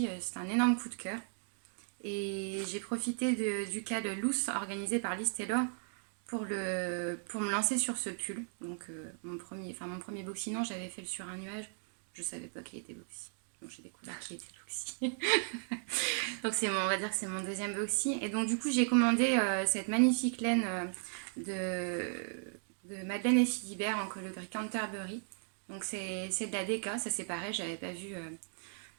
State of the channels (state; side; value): silent; left; 54 dB below the other